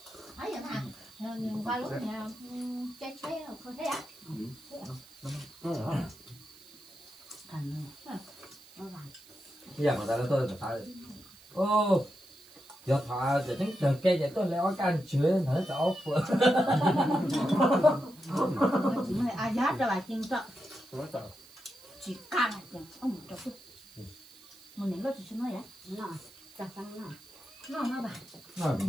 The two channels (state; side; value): noise; right; hiss, 23 dB below the sound